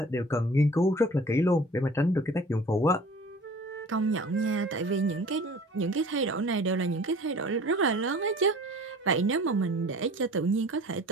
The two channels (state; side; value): normal; both; correlation 0.46